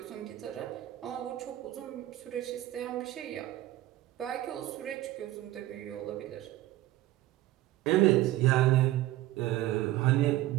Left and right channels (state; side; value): quieter; left; 15.3 dB